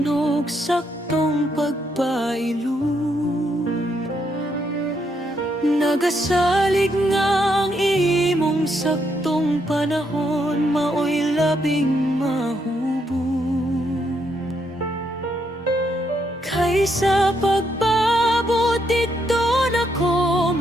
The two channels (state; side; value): normal; both; correlation 0.76